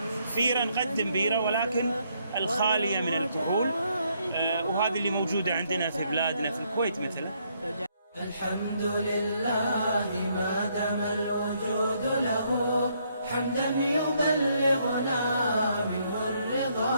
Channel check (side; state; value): both; inverted; correlation -0.72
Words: بيرة نقدم بيرة ولكن الخالية من الكحول، وهذه اللي موجودة عندنا في بلادنا في الكويت مثلا. الحمد لله ما دام الوجود له، حمدا يبلغنا منه الرضا